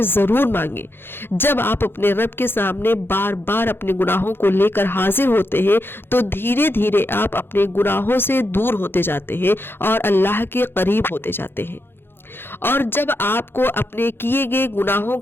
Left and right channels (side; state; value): right; late; 0.10 ms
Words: ज़रूर मांगे। जब आप अपने रब के सामने बार बार अपने गुनाहों को लेकर हाजिर होते हैं, तो धीरे धीरे आप अपने गुनाहों से दूर होते जाते हैं और अल्लाह के करीब होते जाते हैं। और जब आपको अपने किए गए गुनाहों